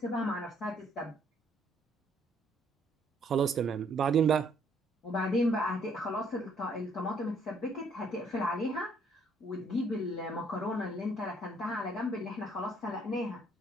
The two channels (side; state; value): both; normal; correlation 0.65